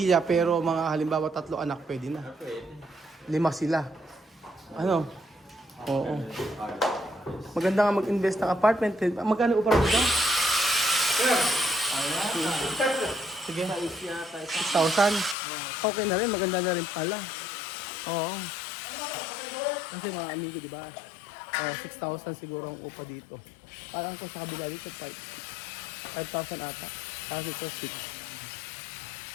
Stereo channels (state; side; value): drops out; right; at 15.4 s